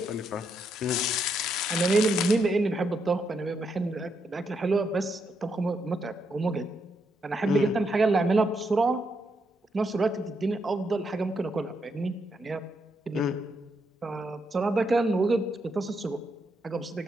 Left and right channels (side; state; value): both; normal; correlation 0.79